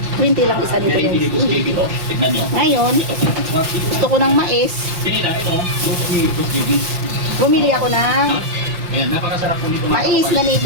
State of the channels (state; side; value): late; left; 5.7 ms